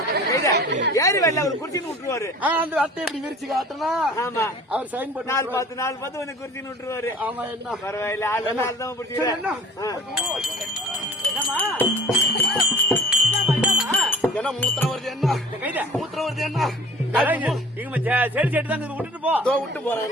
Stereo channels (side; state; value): both; normal; correlation 0.45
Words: ஏரி வேலை அவர் குறிச்சின்னு விட்டுருவாரு அந்த அட்டையை இப்படி விரிச்சு காட்டினா ஆமா அவர் சைன் போட்டு நாலு பார்த்து கொஞ்சம் குறிச்சின்னு விட்டுருவாரு ஆமா என்ன பரவாயில்ல ஆள் தான் பிடிச்சிக்கிறேன் என்னமா என்ன மூத்திரம் வருது என்ன கைத மூத்திரம் வருது என்ன செடி செடி தான் விட்டுட்டு போ விட்டு போறேன்